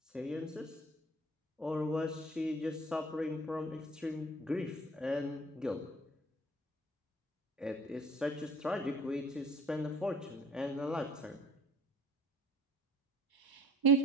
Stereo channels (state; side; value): normal; both; correlation 0.50